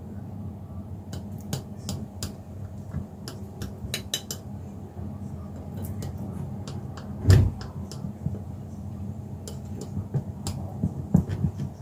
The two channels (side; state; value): both; identical; correlation 1.00